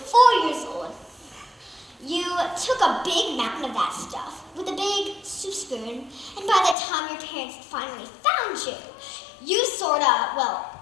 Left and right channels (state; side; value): drops out; right; at 6.8 s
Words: by the time your parents finally found you, you sorta,